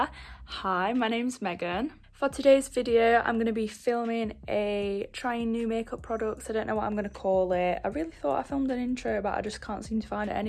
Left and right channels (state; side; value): identical; both; correlation 1.00